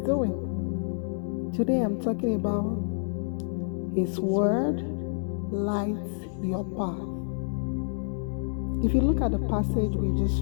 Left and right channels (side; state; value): right; silent; digital silence